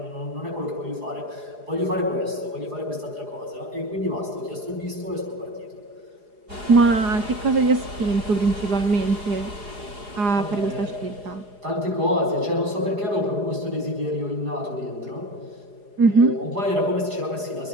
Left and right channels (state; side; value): late; left; 4.8 ms